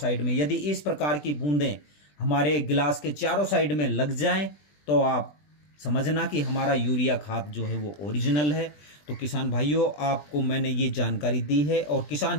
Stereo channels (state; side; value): late; right; 20 ms